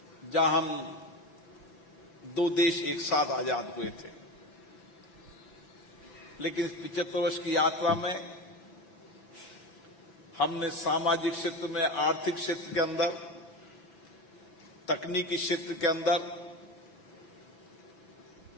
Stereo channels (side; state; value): right; late; 6.0 ms